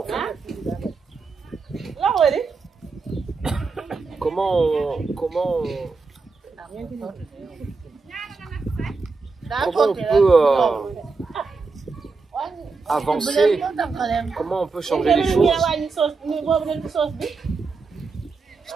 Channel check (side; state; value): left; quieter; 4.3 dB